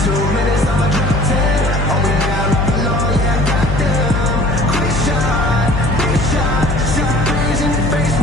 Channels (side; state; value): left; noise; hum, 2 dB below the sound